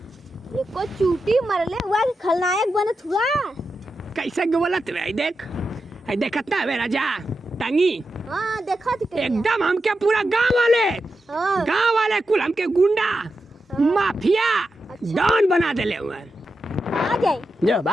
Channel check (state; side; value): normal; both; correlation 0.89